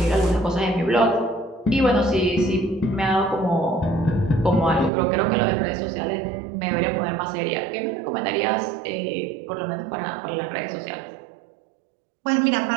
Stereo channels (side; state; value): left; drops out; at 4.9 s